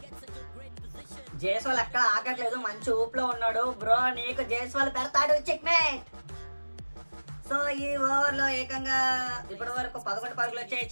జైస్వాల్ ఎక్కడ ఆగట్లేదు, మంచి ఊపులో ఉన్నాడు బ్రో. నీకు జైస్వాల్ పెడతాడు చెక్మేట్. సో ఈ ఓవర్ లో ఏకంగా ఇప్పటి వరకు 11 పరుగులు వచ్చాయి.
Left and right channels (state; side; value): inverted; both; correlation -1.00